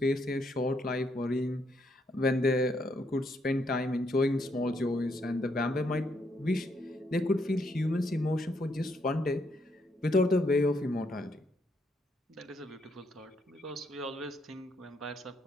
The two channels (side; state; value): both; normal; correlation 0.75